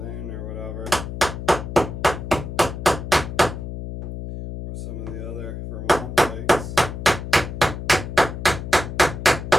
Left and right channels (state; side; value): noise; left; hum, 7 dB below the sound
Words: or whatever, or some of the other Vermont lakes.